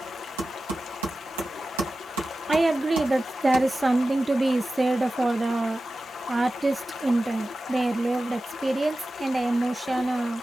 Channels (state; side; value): normal; both; correlation 0.94